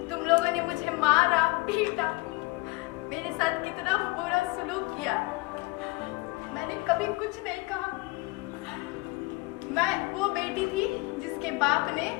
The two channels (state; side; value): quieter; right; 24.1 dB